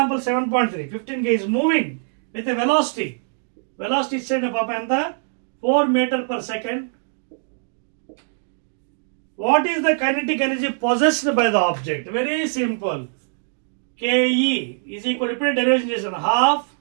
7.3, 15 kg is moving with a velocity ఇచ్చేయండి పాప ఎంత? 4 meter per second. What is the kinetic energy possessed by the object? Very simple. KE is equal to, ఇప్పుడు derivation చేసాను, half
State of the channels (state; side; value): silent; left; digital silence